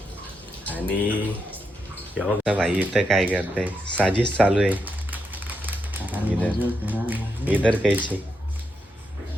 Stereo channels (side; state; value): both; normal; correlation 0.83